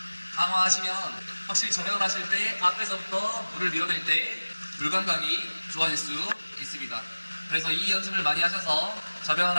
강화하시면 확실히 저강을 하실 때 앞에서부터 물을 밀어낼 때 물감각이 좋아질 수 있습니다. 그래서 이 연습을 많이 하셔서 저병을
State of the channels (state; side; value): inverted; both; correlation -1.00